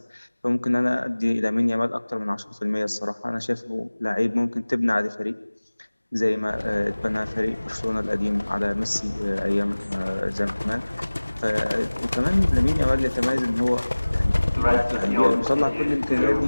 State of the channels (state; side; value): inverted; both; correlation -1.00